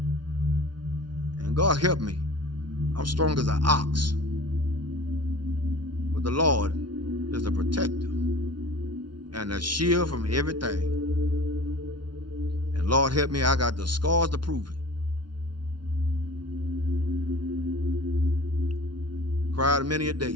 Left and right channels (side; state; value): left; late; 0.71 ms